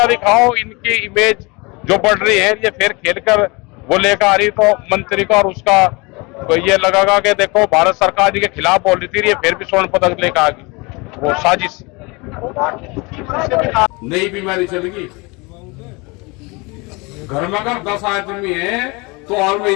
दिखाओ, इनकी इमेज जो बढ़ रही है, ये फिर खेल कर वो लेकर आ रही, तो मंत्री का और उसका तो ये लगेगा कि देखो भारत सरकार जी के खिलाफ बोल रही थी, ये फिर भी स्वर्ण पदक लेकर आ गई, वो साजिश। नई बीमारी चलेगी, घर में अगर 10 आदमी है तो और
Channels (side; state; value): right; quieter; 26.8 dB